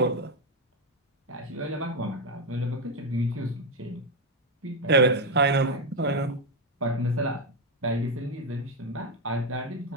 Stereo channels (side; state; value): both; normal; correlation 0.06